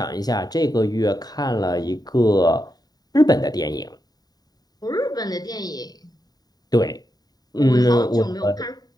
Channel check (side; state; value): right; late; 0.19 ms